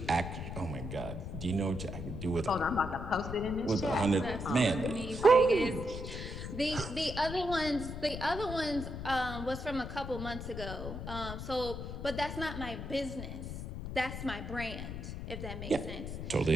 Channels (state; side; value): noise; left; rumble, 7 dB below the sound